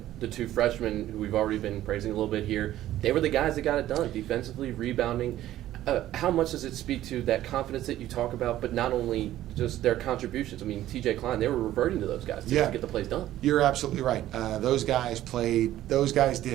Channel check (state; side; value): quieter; left; 13.6 dB